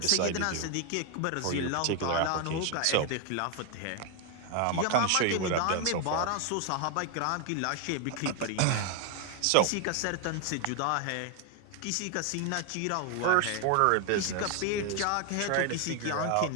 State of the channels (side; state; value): both; different; correlation 0.01